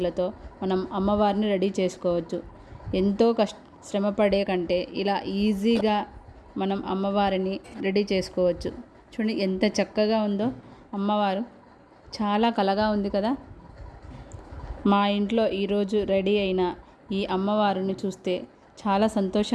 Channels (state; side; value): identical; both; correlation 1.00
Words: మనం అమ్మవారిని రెడీ చేసుకోవచ్చు. ఎంతో శ్రమపడే కంటే ఇలా ఈజీగా మనం అమ్మవారిని రెడీ చేసుకోవచ్చు. చూడండి ఎంత చక్కగా ఉందో అమ్మవారు, చాలా కళగా ఉంది కదా. మా ఇంట్లో ఈరోజు రెడీ అయిన ఈ అమ్మవారిని చూస్తే చాలా